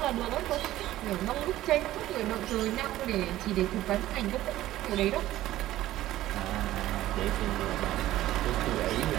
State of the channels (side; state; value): left; quieter; 14.8 dB